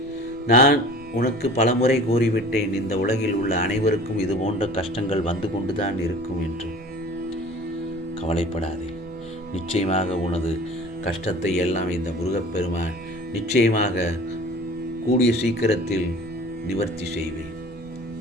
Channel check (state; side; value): normal; both; correlation 0.43